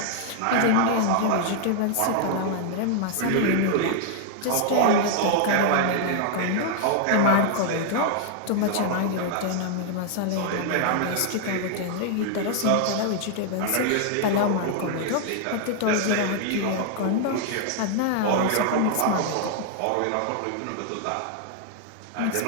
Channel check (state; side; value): different; both; correlation 0.00